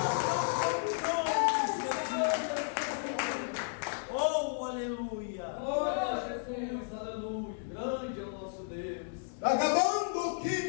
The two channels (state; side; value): silent; right; digital silence